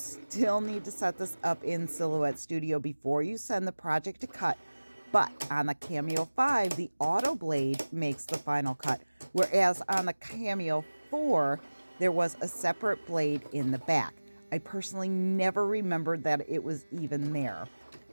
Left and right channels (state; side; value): inverted; both; correlation -1.00